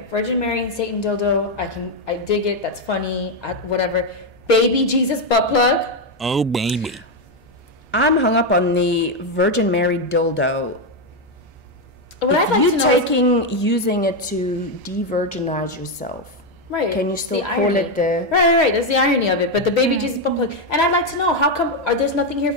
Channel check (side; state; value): both; normal; correlation 0.05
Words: Virgin Mary and Satan dildo. I dig it. That's funny. Whatever. Baby Jesus butt plug. Oh, baby. I'm hung up on the Virgin Mary dildo. What I'd like to know using it to de-virginize yourself. Right. Can you still call irony. it the... Right. That's the irony of it. But the Baby Jesus butt plug. And I'd like to know, how come there's nothing here